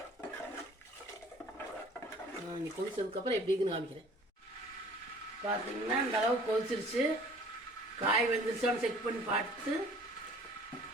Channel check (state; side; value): normal; both; correlation 0.51